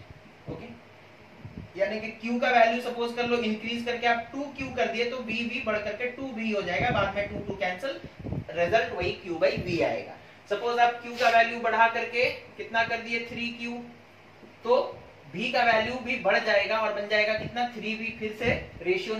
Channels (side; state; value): both; identical; correlation 1.00